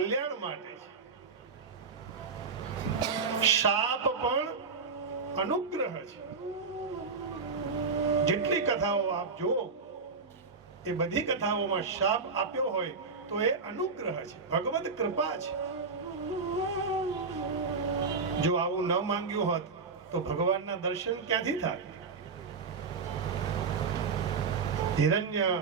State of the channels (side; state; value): left; quieter; 4.8 dB